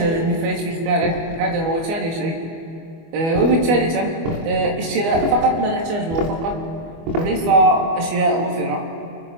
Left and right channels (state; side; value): late; left; 24 ms